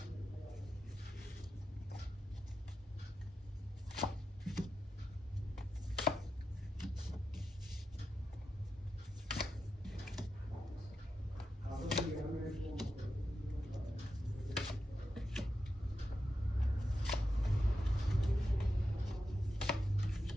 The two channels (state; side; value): normal; both; correlation 0.89